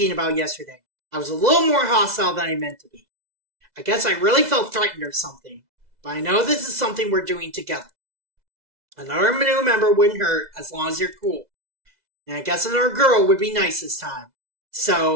about yesterday. I was a little more hostile than I meant to be. I guess I really felt threatened or something. But I know this is something we're doing together. Another new member wouldn't hurt as long as you're cool. And I guess another girl would be nice this time.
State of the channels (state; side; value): late; left; 2.0 ms